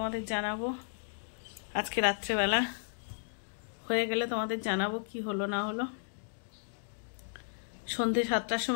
জানাবো। আজকে রাত্রেবেলা হয়ে গেলে তোমাদের জানাবো কি হলো না হলো। সন্ধ্যে 7টার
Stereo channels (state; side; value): silent; right; digital silence